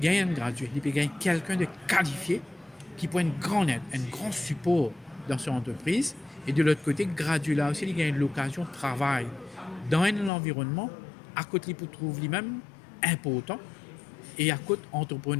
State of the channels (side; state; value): right; drops out; at 10.3 s